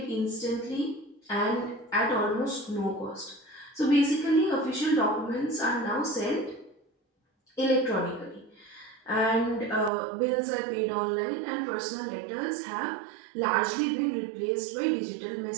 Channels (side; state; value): left; drops out; at 9.9 s